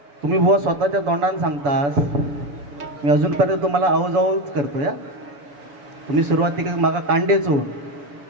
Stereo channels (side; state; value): left; late; 6.9 ms